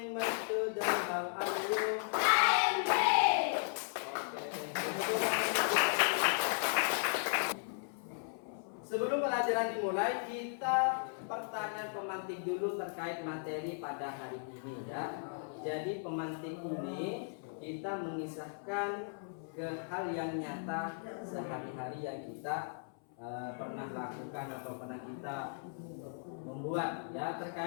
my students. How are you? I'm great. Sebelum pelajaran dimulai, kita pertanyaan pemantik dulu terkait materi pada hari ini ya. Jadi pemantik ini kita mengisahkan ke hal yang nyata sehari-hari yang kita pernah lakukan atau pernah kita membuat ya,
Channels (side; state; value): right; silent; 53 dB below the other